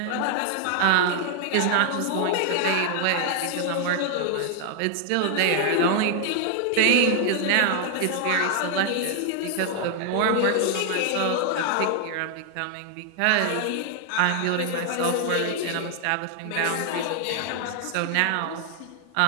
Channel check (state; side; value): different; both; correlation 0.00